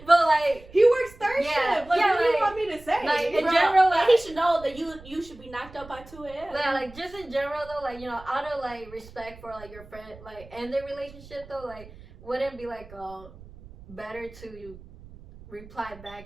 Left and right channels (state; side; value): noise; right; rumble, 20 dB below the sound